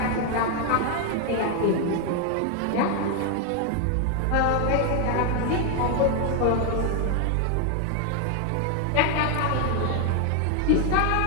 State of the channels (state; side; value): different; both; correlation 0.00